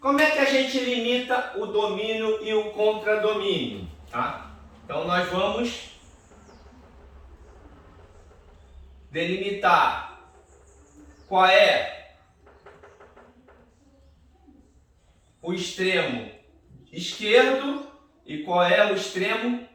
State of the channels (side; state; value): both; identical; correlation 1.00